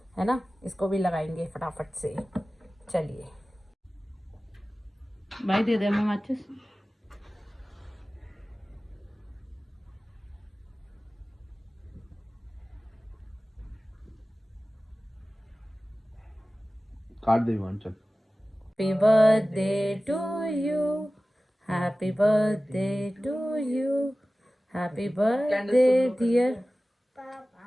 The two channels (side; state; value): both; normal; correlation 0.97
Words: है ना। इसको भी लगाएंगे फटाफट से। चलिए भाई दे दे मैं माचिस। काट दे चल। Happy birthday to you, happy birthday to you, happy birthday dear.